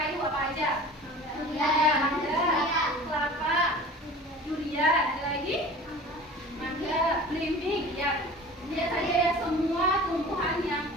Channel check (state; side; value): normal; both; correlation 0.40